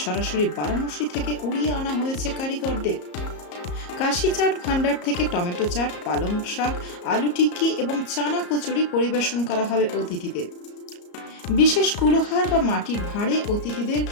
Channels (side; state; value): right; late; 34 ms